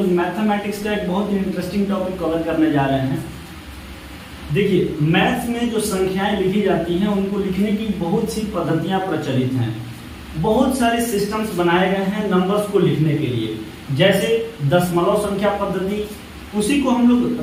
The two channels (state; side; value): identical; both; correlation 1.00